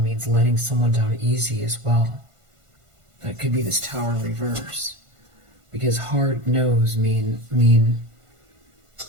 letting someone down easy as well. That could be this Tower reverse. because hard no's mean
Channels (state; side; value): late; left; 1.5 ms